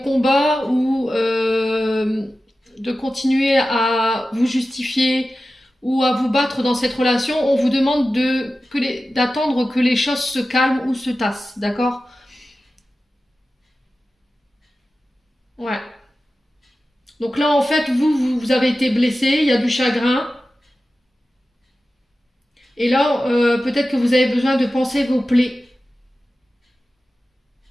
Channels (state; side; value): normal; both; correlation 0.94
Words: ou de continuer à vous justifier ou à vous battre dans cette relation. On vous demande d'attendre que les choses se calment ou se tassent, d'accord? Ouais. Donc là, en fait, vous avez été blessé, il y a du chagrin. Et là, peut-être que vous avez besoin de penser vos plaies.